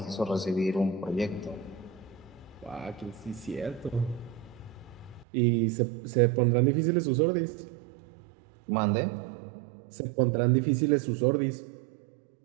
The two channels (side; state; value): left; drops out; at 5.2 s